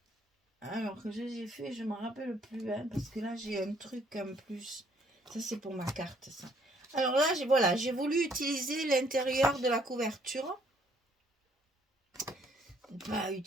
Alors que j'ai fait, je ne me rappelle plus, hein, parce que là, j'ai un truc en plus. Ça, c'est pour ma carte, ça. Alors là, voilà, j'ai voulu utiliser l'intérieur de la couverture. Pas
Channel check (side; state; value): both; normal; correlation 0.65